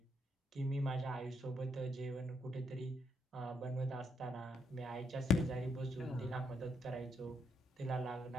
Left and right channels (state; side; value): normal; both; correlation 0.76